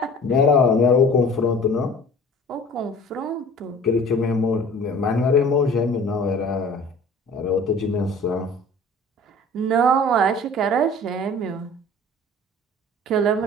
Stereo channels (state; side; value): normal; both; correlation 0.45